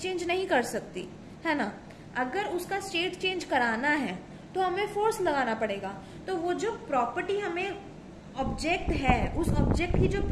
नहीं कर सकती है ना, अगर उसका स्टेट चेंज कराना है तो हमें फोर्स लगाना पड़ेगा। तो वो जो प्रॉपर्टी हमें ऑब्जेक्ट है, उस ऑब्जेक्ट की जो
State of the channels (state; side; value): identical; both; correlation 1.00